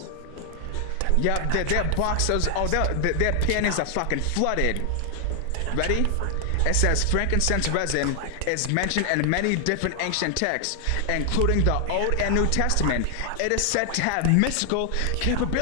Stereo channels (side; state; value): both; different; correlation 0.00